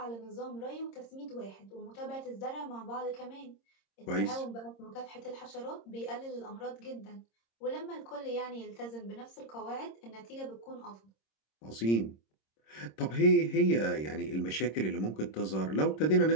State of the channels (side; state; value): right; late; 26 ms